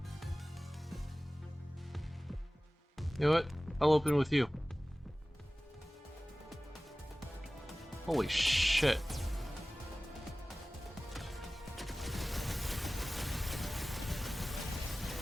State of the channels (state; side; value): normal; both; correlation 0.97